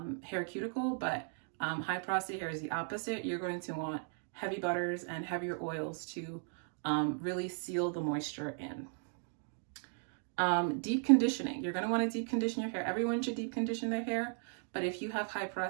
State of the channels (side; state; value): left; silent; 53 dB below the other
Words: cuticle. But high porosity hair is the opposite. You're going to want heavy butters and heavier oils to really seal the moisture in. Deep conditioning. You're going to want to deep condition your hair. Everyone should deep condition their hair, but if you have high